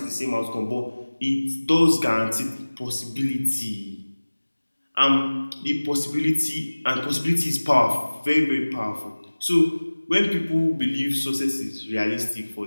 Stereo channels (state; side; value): inverted; both; correlation -1.00